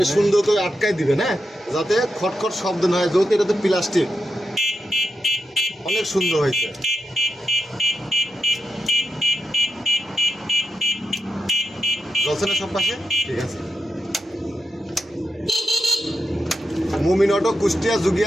সুন্দর করে আটকাই দিবেন, হ্যাঁ, যাতে খটখট শব্দ না হয়। যেহেতু এটা তো প্লাস্টিক, অনেক সুন্দর হয়েছে। চলছে না সব পাশে? ঠিক আছে। মমিন অটো, কুষ্টিয়া,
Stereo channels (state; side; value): normal; both; correlation 0.86